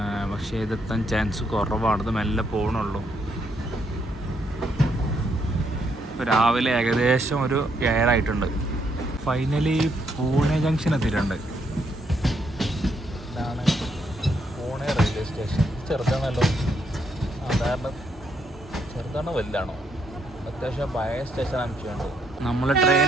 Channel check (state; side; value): normal; both; correlation 0.75